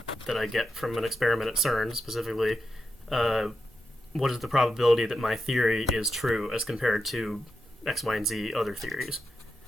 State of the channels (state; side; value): normal; both; correlation 0.88